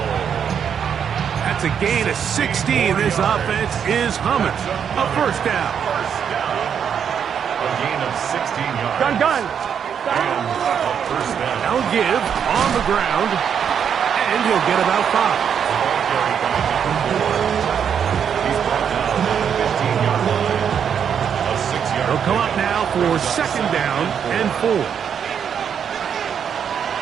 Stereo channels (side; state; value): left; quieter; 7.8 dB